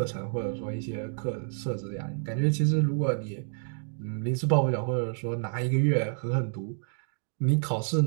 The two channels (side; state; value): left; silent; digital silence